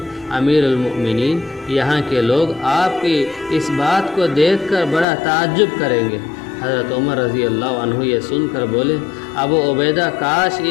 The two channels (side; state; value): right; drops out; at 5.1 s